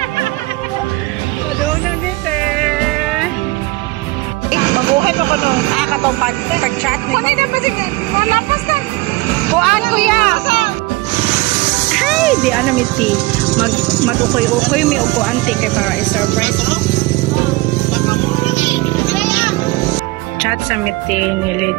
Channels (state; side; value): quieter; left; 21.3 dB